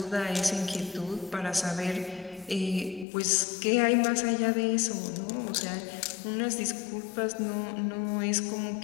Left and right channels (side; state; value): right; drops out; at 3.1 s